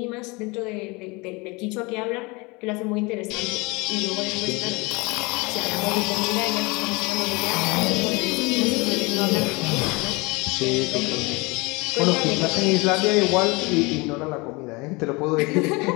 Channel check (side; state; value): right; quieter; 26.2 dB